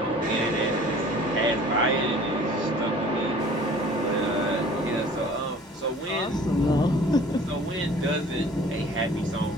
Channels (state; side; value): normal; both; correlation 0.49